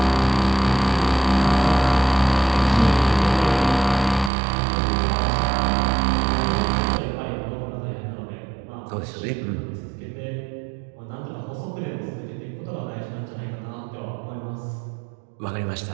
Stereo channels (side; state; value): left; drops out; at 4.3 s